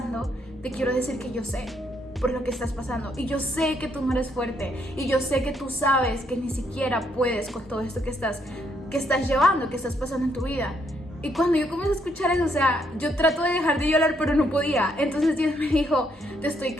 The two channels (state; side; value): normal; both; correlation 0.73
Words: te quiero decir que yo sé por lo que estás pasando. Y yo sé que tú no eres fuerte. Y yo sé que tú sabes que ni siquiera puedes con todo esto que estás llevando, que estás pasando en tu vida. Y cuando yo comencé a escuchar eso, o sea, yo trato de dejar de llorar, pero no podía. Entonces Dios me dijo, te estoy